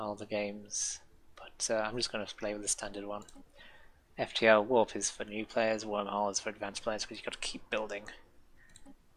the games, but I'm just going to play with the standard one. FTL warp is for new players, wormhole is for advanced players, because you've got to keep building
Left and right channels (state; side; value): identical; both; correlation 1.00